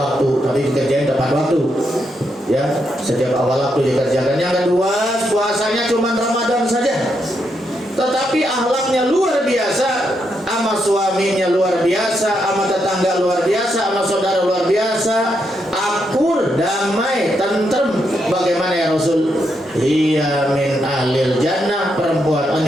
tapi dikerjain tepat waktu. Ya, setiap awal waktu dikerjakan. Yang kedua, puasanya cuma Ramadan saja. Tetapi akhlaknya luar biasa, sama suaminya luar biasa, sama tetangga luar biasa, sama saudara luar biasa, akur, damai, tentrem. Bagaimana ya Rasul? Hiya min ahlil jannah, perempuan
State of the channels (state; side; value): normal; both; correlation 0.80